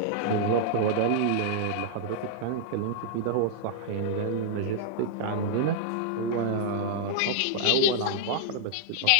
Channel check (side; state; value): both; different; correlation -0.01